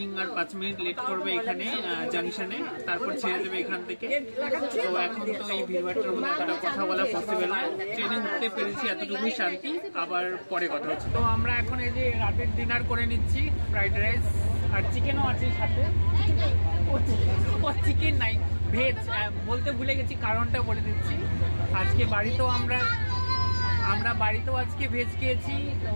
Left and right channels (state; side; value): inverted; both; correlation -1.00